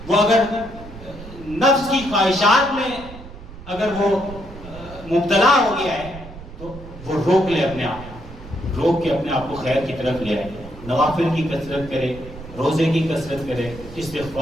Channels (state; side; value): noise; right; rumble, 15 dB below the sound